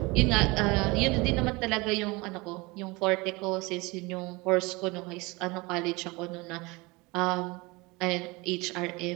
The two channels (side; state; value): left; quieter; 24.5 dB